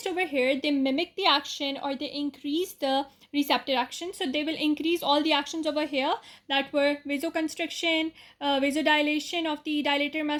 over here, they mimic the action or they increase the receptor action. So they will increase all the actions over here that were vasoconstriction, vasodilation of the dilator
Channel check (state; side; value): identical; both; correlation 1.00